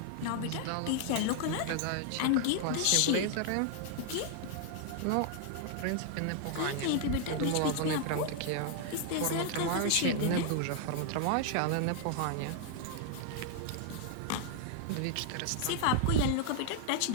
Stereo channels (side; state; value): both; different; correlation 0.00